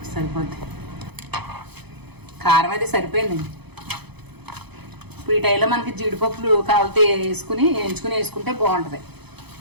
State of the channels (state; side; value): late; left; 0.98 ms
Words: సరిపోద్ది. కారం అది సరిపోయిందండి. ఇప్పుడు ఈ టైంలో మనకి జీడిపప్పులు కావాలితే వేయించుకుని వేసుకుంటే బాగుంటుంది.